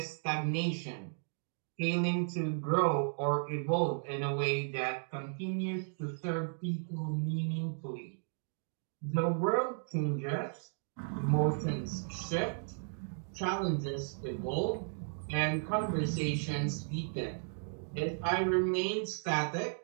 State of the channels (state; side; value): silent; left; digital silence